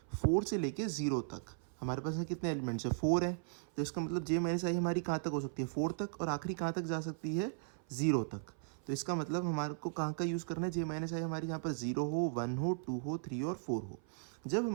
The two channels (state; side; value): silent; left; 53 dB below the other